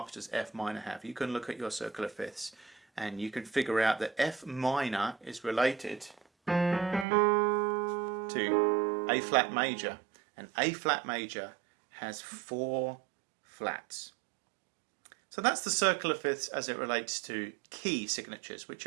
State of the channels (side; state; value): left; drops out; at 7.1 s